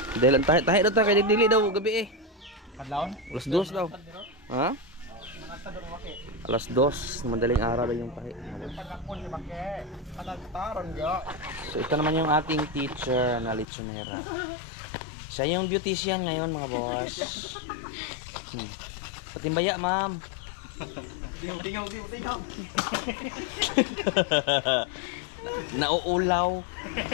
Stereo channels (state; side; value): drops out; right; at 13.7 s